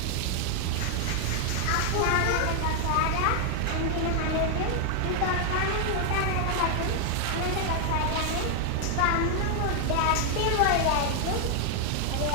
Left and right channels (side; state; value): both; different; correlation 0.00